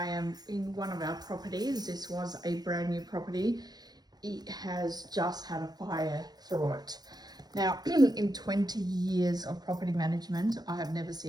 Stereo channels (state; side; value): late; left; 0.19 ms